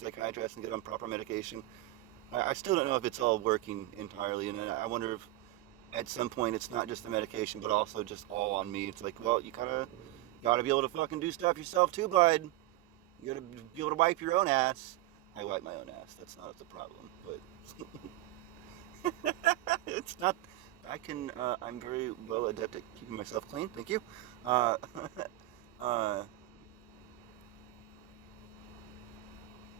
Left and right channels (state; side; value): quieter; left; 16.7 dB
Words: and get on proper medication. I still don't know if it's all working entirely, and I wonder if at some point it's not just the medication, but also just all on me. It's like, well, you gotta be able to fucking do stuff yourself too, bud. You gotta be able to wipe your own ass. I wipe my own ass. That's not the problem, but it's not. I'm very well adept at keeping myself clean. Thank you. I